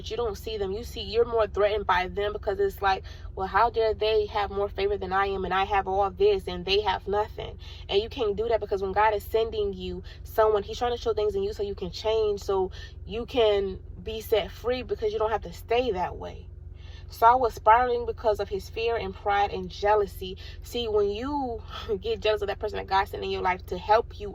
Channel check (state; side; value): identical; both; correlation 1.00